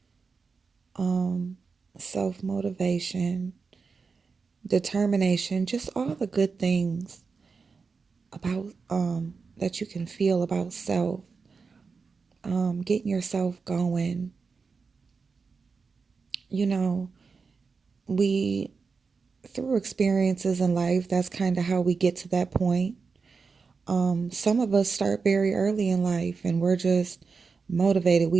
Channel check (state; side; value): quieter; left; 4.9 dB